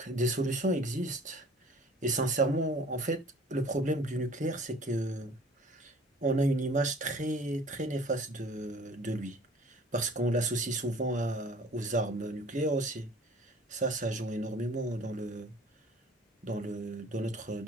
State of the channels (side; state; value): both; normal; correlation 0.50